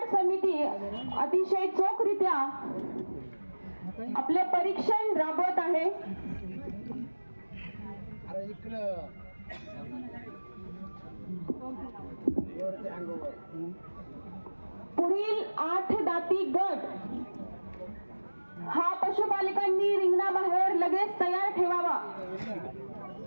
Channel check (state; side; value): inverted; both; correlation -1.00